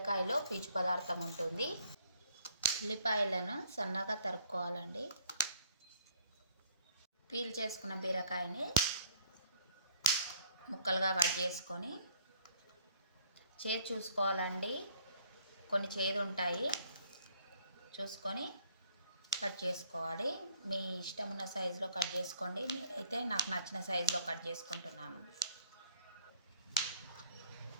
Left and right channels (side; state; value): both; inverted; correlation -0.60